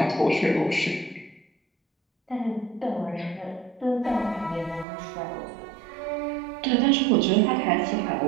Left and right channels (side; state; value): left; drops out; at 4.9 s